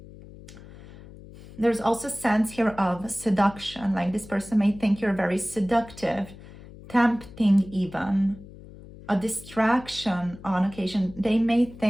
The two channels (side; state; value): left; noise; hum, 18 dB below the sound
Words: There's also sense here of seduction, like this person may think you're very seductive, tempting even, a distraction on occasion. They may